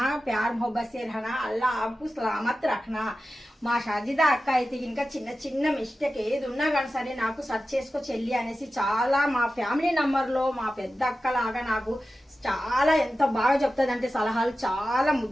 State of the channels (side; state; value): both; normal; correlation 0.94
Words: प्यार मोहब्बत से रहना, अल्लाह आपको सलामत रखना। మా షాజిదా అక్క అయితే ఇంకా చిన్న చిన్న మిస్టేక్ ఏది ఉన్నా కానీ సరే నాకు సెర్చ్ చేసుకో చెల్లి అనేసి చాలా మా ఫ్యామిలీ నంబర్లో మా పెద్ద అక్క లాగా నాకు చాలా ఎంత బాగా చెప్తుందంటే సలహాలు చాలా